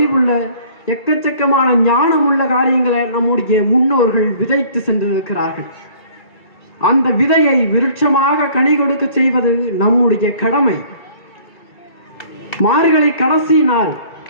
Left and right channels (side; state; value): right; late; 2.3 ms